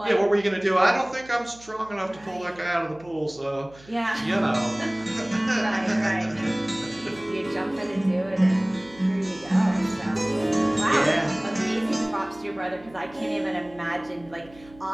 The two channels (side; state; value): right; noise; hum, 23 dB below the sound